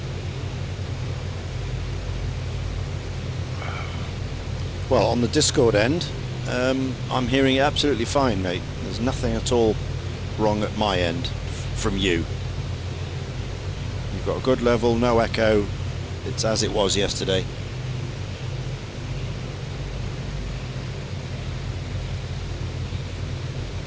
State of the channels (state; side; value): identical; both; correlation 1.00